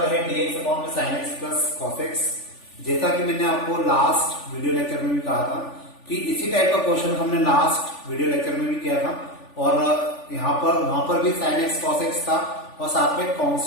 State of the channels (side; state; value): right; late; 3.4 ms